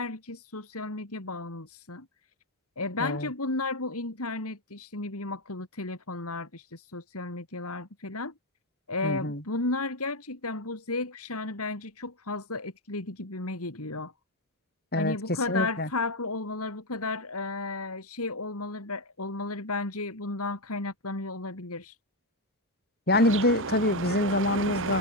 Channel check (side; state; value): both; normal; correlation 0.06